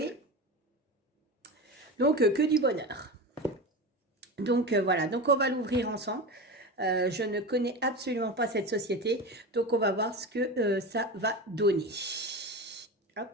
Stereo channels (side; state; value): both; normal; correlation 0.25